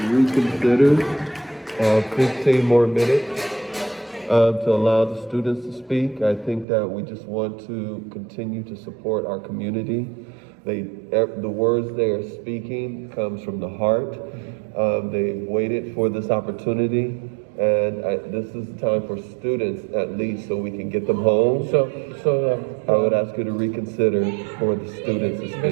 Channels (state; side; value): drops out; left; at 6.7 s